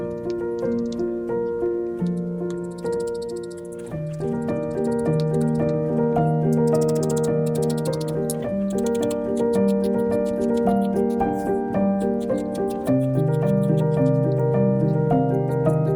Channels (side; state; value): both; identical; correlation 1.00